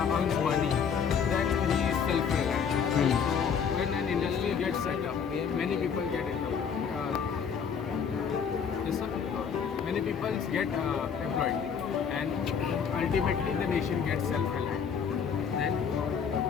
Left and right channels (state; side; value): quieter; right; 6.9 dB